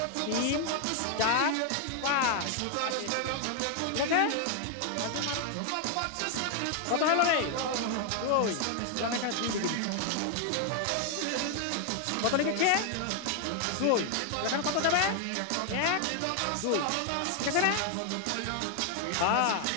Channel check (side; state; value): both; different; correlation 0.00